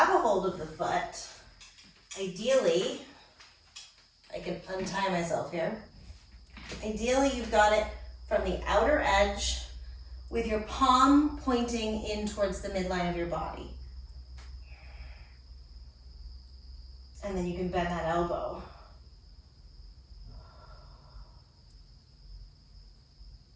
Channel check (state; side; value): identical; both; correlation 1.00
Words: a hold of the foot, ideally, I can untie myself here. Ideally, you've got it from the outer edge with your palm pointing in towards the midline of your body. And then you can bend that elbow.